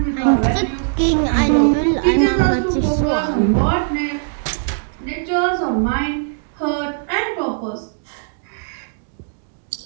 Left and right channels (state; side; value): silent; left; digital silence